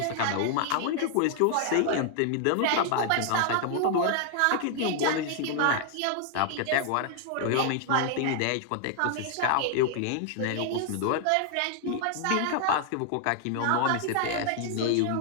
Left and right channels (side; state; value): both; different; correlation 0.00